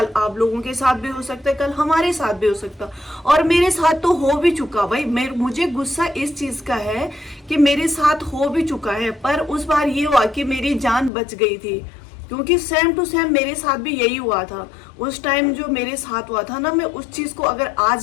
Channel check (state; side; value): drops out; right; at 11.1 s